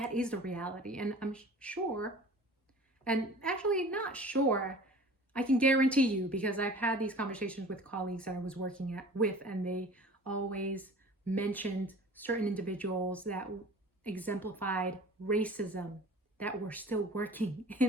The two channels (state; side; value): normal; both; correlation 0.43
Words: is the reality. And I'm sure, and actually not sure, I can guarantee you, because I've had these conversations with colleagues that I was working with, and they always mentioned certain individuals that exemplified racism that were still working